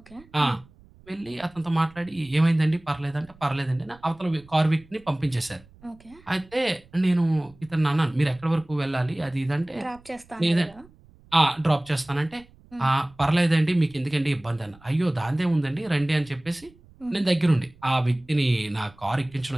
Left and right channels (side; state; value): right; noise; rumble, 26 dB below the sound